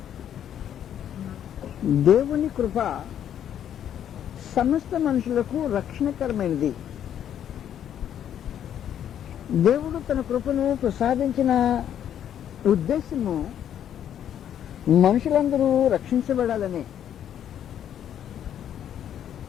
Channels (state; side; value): quieter; right; 9.9 dB